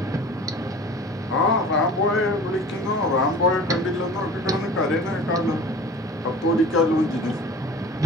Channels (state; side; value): normal; both; correlation 0.45